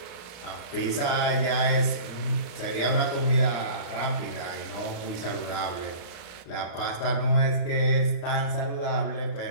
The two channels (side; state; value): right; late; 35 ms